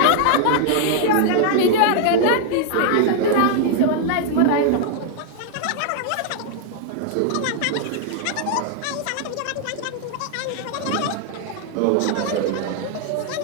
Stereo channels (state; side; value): different; both; correlation 0.00